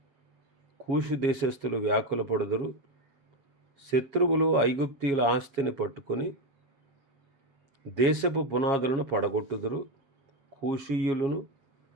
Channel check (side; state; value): left; late; 7.3 ms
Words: కూషు దేశస్థులు వ్యాకుల పడుదురు, శత్రువులు ఐగుప్తీయుల ఆస్తిని పట్టుకొని దేశపు పునాదులను పడగొట్టుదురు, కూషీయులను,